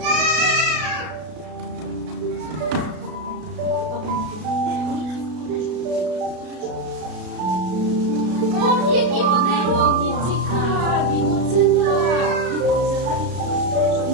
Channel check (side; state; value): left; late; 33 ms